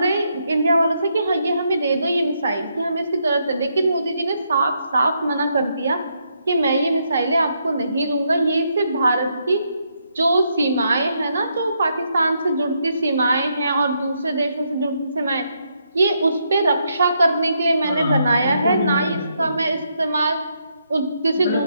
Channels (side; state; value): both; inverted; correlation -0.78